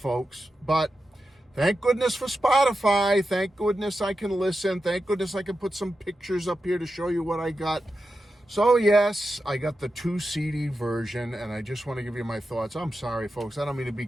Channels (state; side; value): normal; both; correlation 0.90